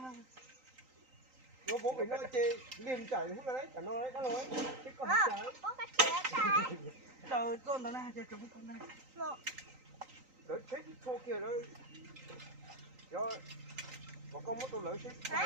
nó bố phải nói chê liền chảy không là đấy chả nói đấy đã nói chứ còn chả đâu con đó này chơi chúng con này lỡ chết thô kia đó do có con mất tôi lỡ chết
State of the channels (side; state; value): left; late; 3.9 ms